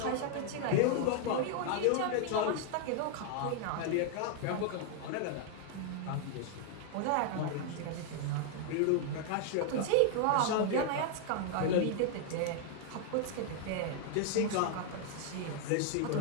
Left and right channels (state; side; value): different; both; correlation 0.00